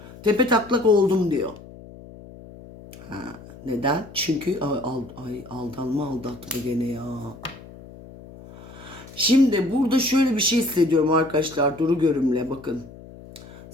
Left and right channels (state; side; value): noise; left; hum, 18 dB below the sound